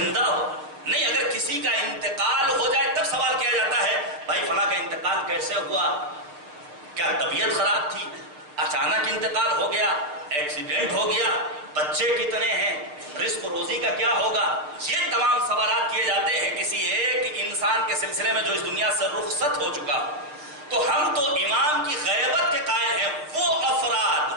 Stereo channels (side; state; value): left; late; 6.7 ms